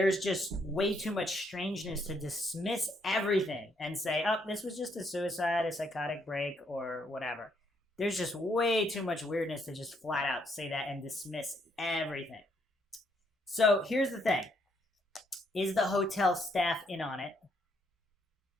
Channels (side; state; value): both; normal; correlation 0.72